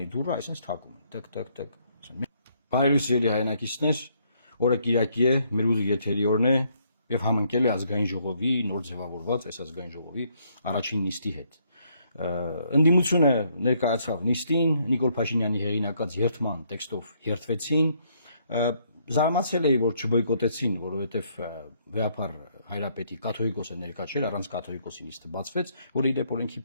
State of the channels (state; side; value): inverted; both; correlation -0.70